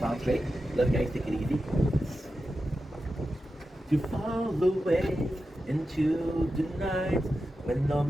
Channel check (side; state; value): both; normal; correlation 0.91